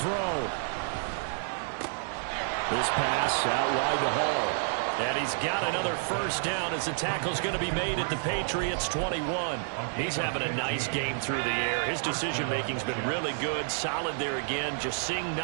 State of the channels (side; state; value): left; silent; 58 dB below the other